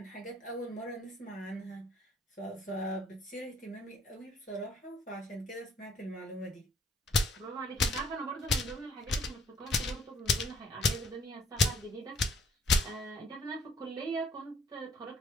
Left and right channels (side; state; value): both; normal; correlation 0.62